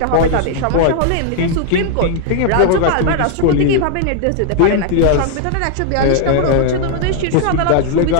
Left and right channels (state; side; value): different; both; correlation 0.00